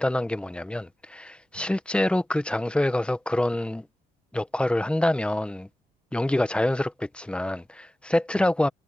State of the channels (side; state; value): both; normal; correlation 0.97